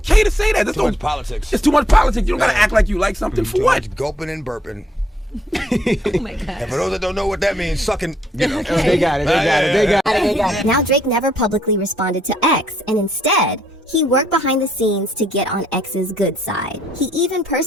to say that. There's Too much politics. It's too much politics. You don't gotta act like you like something for Too what? much gulping and burping. Oh my God. And for those that don't know what that means, sucking, you know. They got it, they got it. Now Drake never publicly responded to X, and instead, he worked behind the scenes to get on X's good side. He even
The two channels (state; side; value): normal; both; correlation 0.72